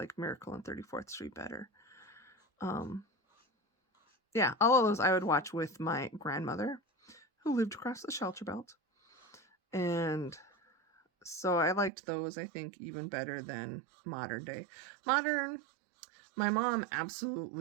Miracle on 34th Street better. Yeah, all of those I would watch with my grandmother, who lived across the shelter belt. And so I liked those, I think, even better than modern day. My mom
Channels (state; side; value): drops out; left; at 11.9 s